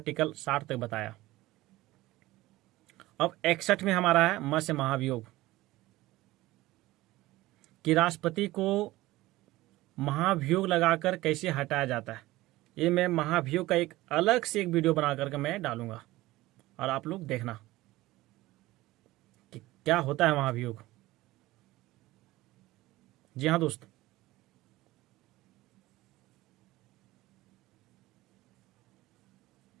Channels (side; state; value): left; quieter; 18.0 dB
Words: 60 तक बताया। अब 61 में हमारा है म से महाभियोग, कि राष्ट्रपति को महाभियोग लगाकर कैसे हटाया जाता है। ये मैं महाभियोग का एक अलग से एक वीडियो बना करके मैं डालूंगा, और आप लोग देखना कि क्या होता है महाभियोग। जी हाँ दोस्त,